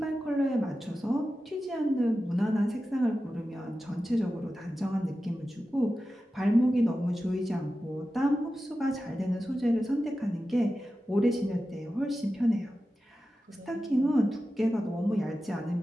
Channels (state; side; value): normal; both; correlation 0.93